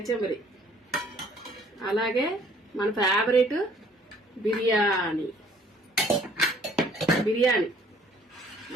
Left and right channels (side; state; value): both; normal; correlation 0.59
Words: అలాగే మన ఫేవరెట్ బిర్యానీ,